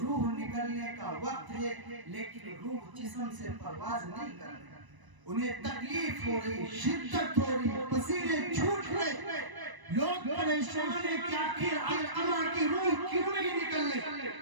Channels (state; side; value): late; left; 1.0 ms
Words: نکلنے کا وقت ہے لیکن روح جسم سے پرواز نہیں کر رہی، انہیں تکلیف ہو رہی، شدت ہو رہی، پسینے چھوٹ رہے، لوگ پریشان ہیں کہ آخر علقمہ کی روح کیوں نہیں نکل رہی،